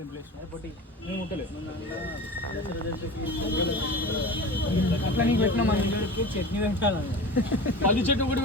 అట్లా నీకు పెట్టినా మన చట్నీ పెట్టాలని 10 చెట్టు ఒకటి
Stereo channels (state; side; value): normal; both; correlation 0.33